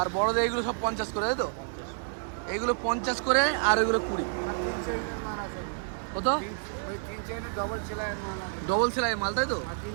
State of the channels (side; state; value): left; silent; 58 dB below the other